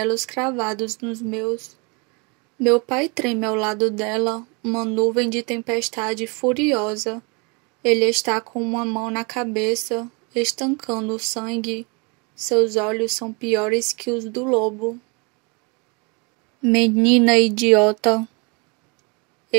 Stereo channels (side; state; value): left; quieter; 31.2 dB